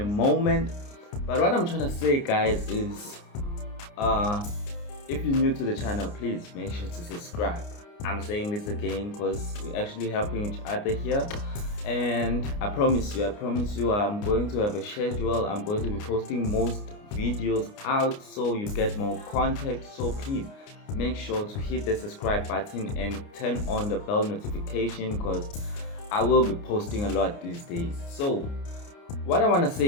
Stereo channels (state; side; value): late; right; 29 ms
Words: moment. But what I'm trying to say, guys, is if you're new to the channel, please make sure to subscribe. I'm saying this again because we're actually helping each other here. And I promise you, I'm going to have a schedule. I'm going to be posting most videos out so you get more content. So please make sure to hit the subscribe button and turn on the bell notification because I will be posting a lot these days. So what I want to